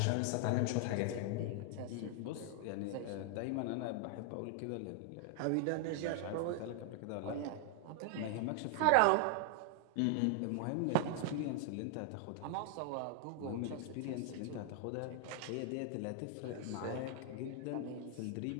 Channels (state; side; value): different; both; correlation 0.00